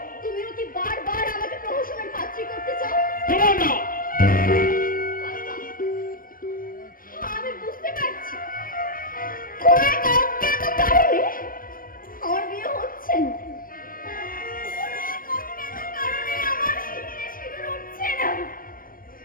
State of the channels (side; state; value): right; late; 0.41 ms